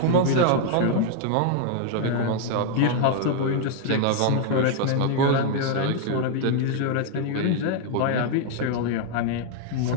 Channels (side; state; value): both; different; correlation 0.00